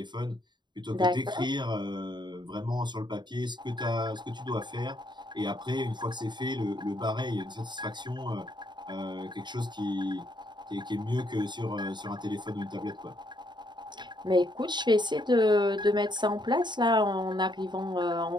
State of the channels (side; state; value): left; late; 0.22 ms